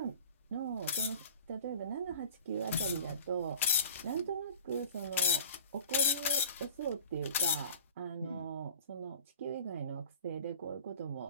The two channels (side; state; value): both; inverted; correlation -0.42